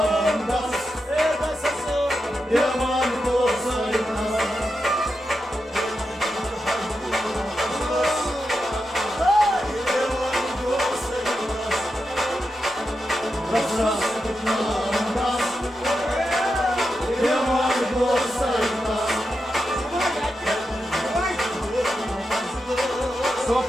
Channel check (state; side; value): normal; both; correlation 0.88